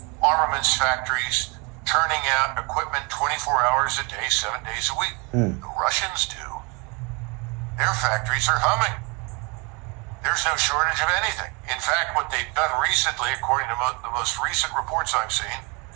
armaments factories, turning out equipment 24 hours a day, 7 days a week. The Russians do. Their factories are humming. There's no shortage of anything. In fact, what they've done recently, according to the most recent reports I've seen,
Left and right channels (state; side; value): quieter; left; 29.5 dB